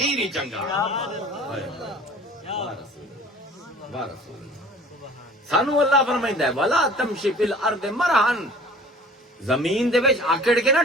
ہی چنگا. سانو اللہ فرمائندا ہے ولا تمشی فی الارض مرحن، زمین دے وچ آکڑ کے نہ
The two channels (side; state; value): both; normal; correlation 0.48